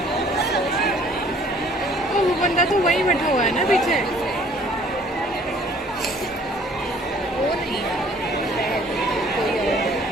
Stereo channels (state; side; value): normal; both; correlation 0.56